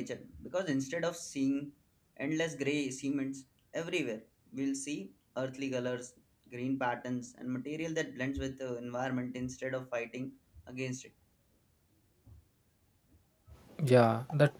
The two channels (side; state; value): both; identical; correlation 1.00